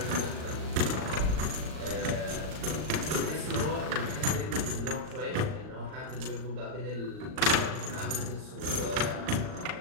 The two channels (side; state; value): left; late; 38 ms